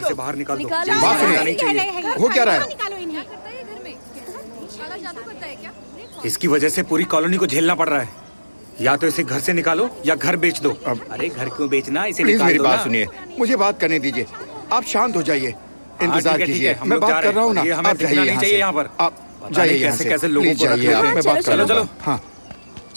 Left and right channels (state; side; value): inverted; both; correlation -1.00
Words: से बाहर निकाल दो। बात सुनिए। नहीं चाहिए। हो क्या रहा है? इसकी वजह से पूरी कॉलोनी को झेलना पड़ रहा है। या तो इसे घर से निकालो या घर बेच दो। अरे घर क्यों बेचना, इसे निकाल दो। मेरी बात सुनिए, मुझे बात करने दीजिए। आप शांत हो जाइए, इंतजार कीजिए। मैं बात कर रहा हूँ ना। आप जाइए यहाँ पर। आप जाइए यहाँ से। कैसे लोगों को जाइए। आप मैं बात कर रहा हूँ। हाँ